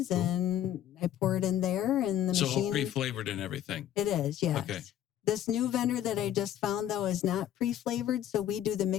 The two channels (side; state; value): right; quieter; 11.3 dB